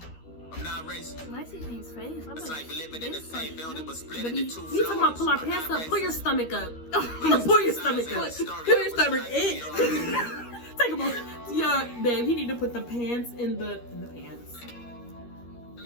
I'm not racist. Why is his face? It's like we living in the same building but split into two floors. You talking about pull our pants up? Pull your stomach up. Pull your stomach up. Pull your stomach in. Take a moment. Yeah, babe, he need to put the pants in the pants.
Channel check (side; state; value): right; late; 13 ms